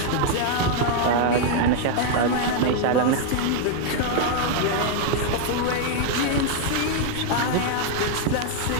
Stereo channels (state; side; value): different; both; correlation 0.00